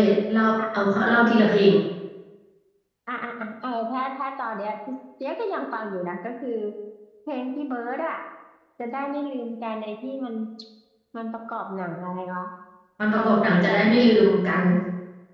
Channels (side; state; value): both; identical; correlation 1.00